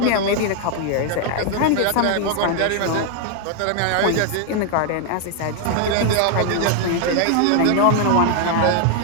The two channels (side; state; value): both; different; correlation 0.00